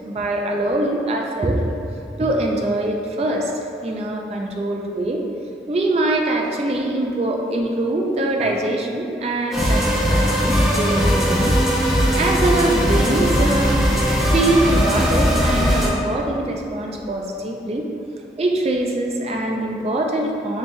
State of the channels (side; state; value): both; normal; correlation 0.67